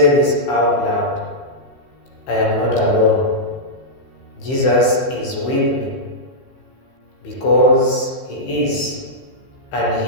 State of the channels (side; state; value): right; late; 15 ms